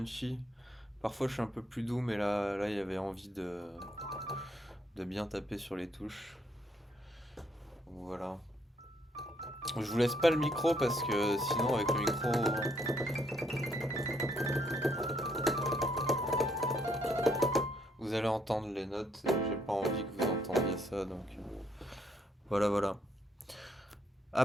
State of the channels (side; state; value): both; normal; correlation 0.70